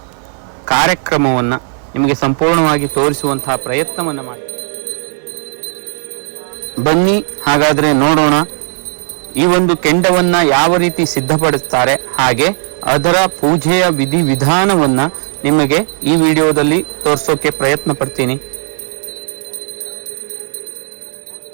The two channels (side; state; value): left; silent; 71 dB below the other